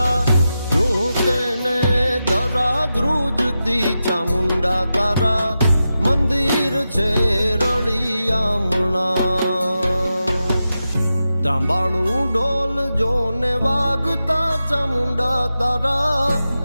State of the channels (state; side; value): inverted; both; correlation -0.90